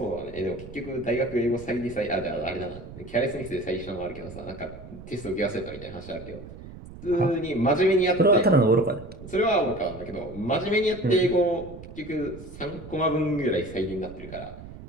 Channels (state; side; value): noise; right; rumble, 14 dB below the sound